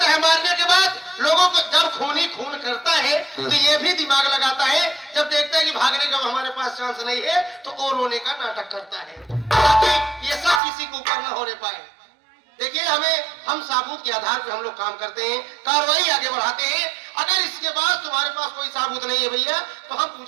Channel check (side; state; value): left; drops out; at 10.6 s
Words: है मारने के बाद लोगों को, जब खूनी खून करता है तो ये भी दिमाग लगाता है, जब देखता है कि भागने का हमारे पास चांस नहीं है तो और रोने का नाटक करता है, ताकि ये सब किसी को ऊपर न होने पाए। देखिए, हम साबूत के आधार पर हम लोग काम करते हैं, कार्रवाई आगे बढ़ाते हैं। अगर इसके बाद तुम्हारे पास कोई साबूत नहीं है भैया, तो हम